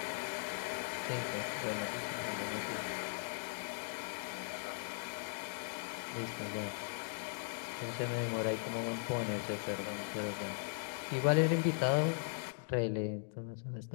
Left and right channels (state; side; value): silent; right; digital silence